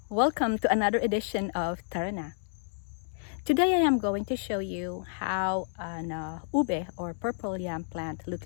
Welcome to another edition of Tara Na. Today I am going to show you how an ube or purple yam plant look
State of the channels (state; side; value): silent; right; digital silence